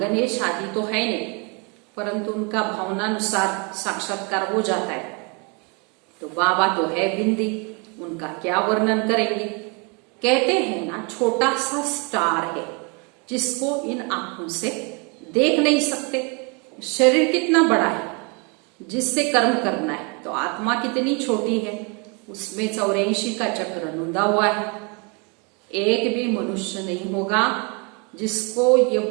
आदि तो है नहीं, परंतु उनका भावनानुसार साक्षात्कार हो जाता है। तो बाबा तो है बिंदी, उनका क्या वर्णन करेंगे। कहते हैं ना छोटा सा स्टार है जिसको इन आंखों से देख नहीं सकते। शरीर कितना बड़ा है जिससे कर्म करना है, तो आत्मा कितनी छोटी है, उसमें 84 का चक्र नूंदा हुआ है। एक भी मनुष्य नहीं होगा जिसको ये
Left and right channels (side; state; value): left; quieter; 32.9 dB